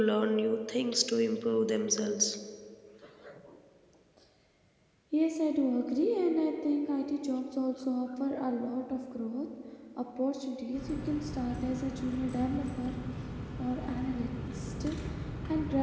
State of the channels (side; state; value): both; identical; correlation 1.00